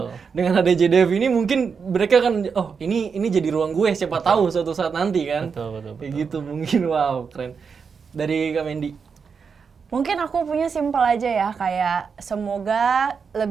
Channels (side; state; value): left; quieter; 5.8 dB